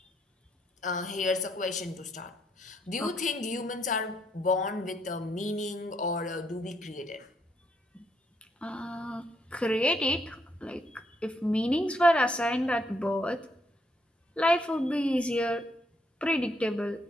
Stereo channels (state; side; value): normal; both; correlation 0.74